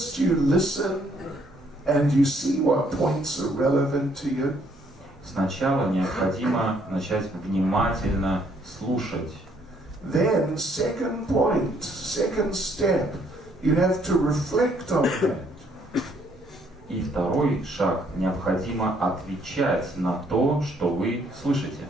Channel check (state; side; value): normal; both; correlation 0.67